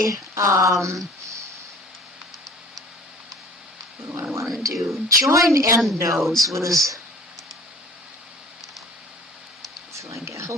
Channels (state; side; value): normal; both; correlation 0.47